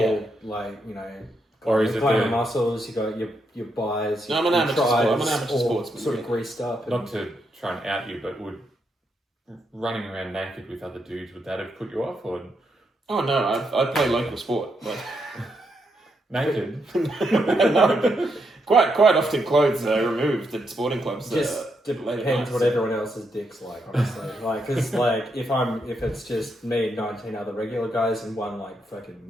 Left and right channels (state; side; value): normal; both; correlation 0.80